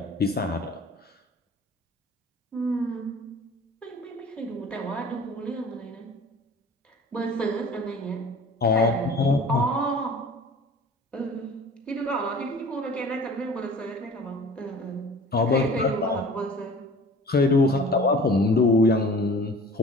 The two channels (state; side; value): normal; both; correlation 0.44